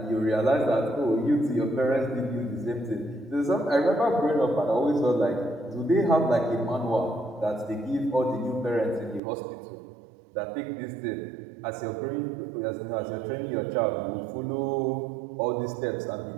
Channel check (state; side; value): drops out; left; at 9.2 s